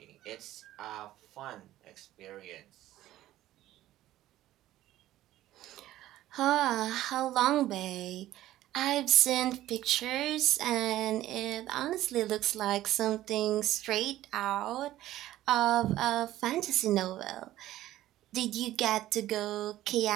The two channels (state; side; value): quieter; left; 14.4 dB